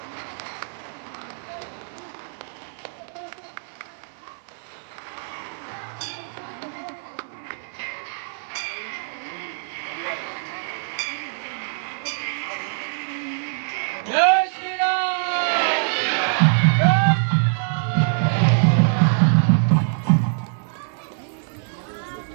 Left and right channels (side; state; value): left; silent; 63 dB below the other